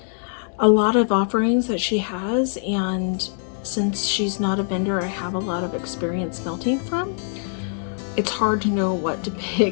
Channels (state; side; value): silent; right; digital silence